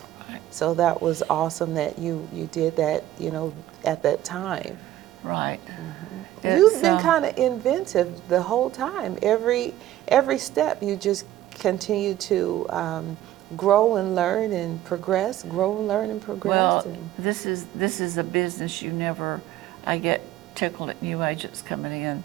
So that was awesome that you did that, you know, at that time. Right. You've been kind of inventive the whole time. Every step you just continue to grow and learn and progress, grow and learn and progress. Well, this is a business I get tickled at new agents coming in.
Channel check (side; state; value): left; quieter; 13.6 dB